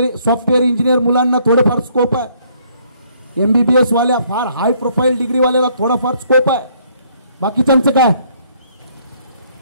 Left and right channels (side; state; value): both; inverted; correlation -0.66